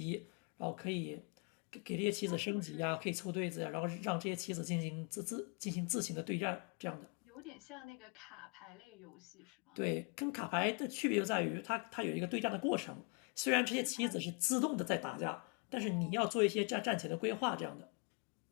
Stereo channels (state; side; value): quieter; right; 36.7 dB